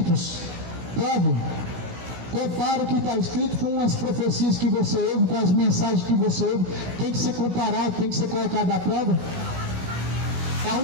Prove, compara o que está escrito com as profecias que você ouve, com as mensagens que você ouve. Tem que ser comparado, tem que ser colocado à prova. É a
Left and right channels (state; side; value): late; left; 16 ms